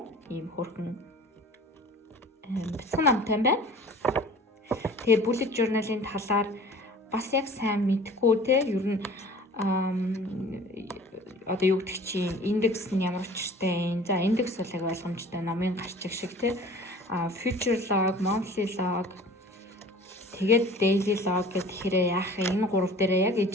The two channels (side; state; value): both; normal; correlation 0.45